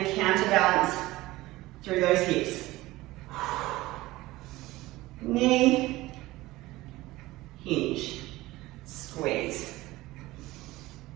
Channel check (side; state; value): left; quieter; 18.5 dB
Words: counterbalance through those hips. Knee, hinge, squeeze.